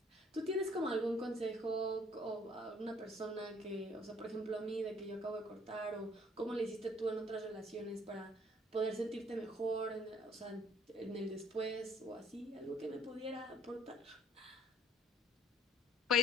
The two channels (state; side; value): normal; both; correlation 0.59